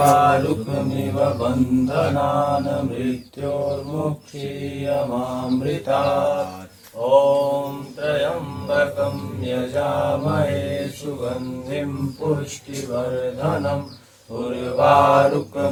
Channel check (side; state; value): both; identical; correlation 1.00